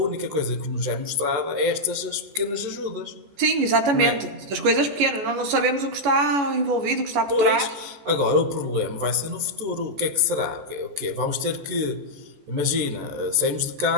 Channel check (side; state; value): left; late; 14 ms